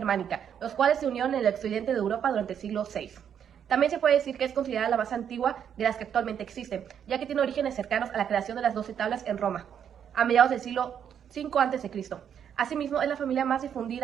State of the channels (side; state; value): left; quieter; 8.6 dB